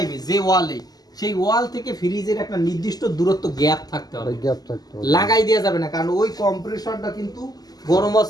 যে ওয়ালে সেই ওয়াল থেকে ফ্রিজের একটা নির্দিষ্ট দূরত্ব গ্যাপ থাকতে হবে, গ্যাপ থাকতে হবে। লাগাই দেওয়া যাবে না, কারণ ওই কম্প্রেসরটা কিন্তু গরম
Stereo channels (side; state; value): right; late; 0.19 ms